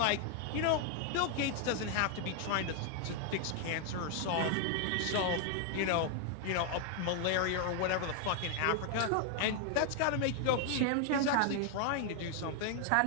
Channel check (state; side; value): different; both; correlation 0.00